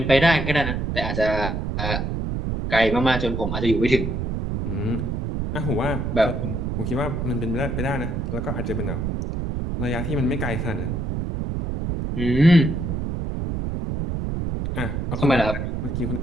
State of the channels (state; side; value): noise; right; rumble, 2 dB below the sound